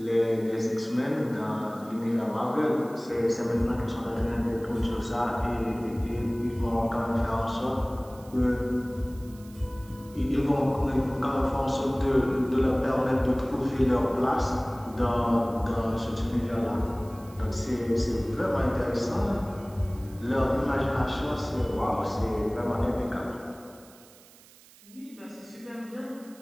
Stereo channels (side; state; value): right; noise; hiss, 24 dB below the sound